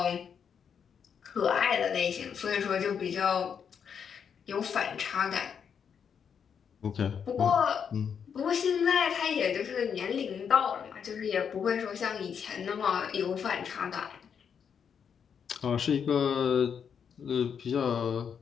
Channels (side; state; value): right; quieter; 7.3 dB